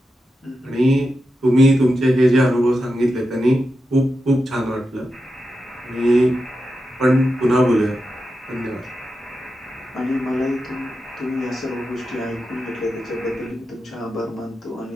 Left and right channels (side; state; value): both; normal; correlation 0.89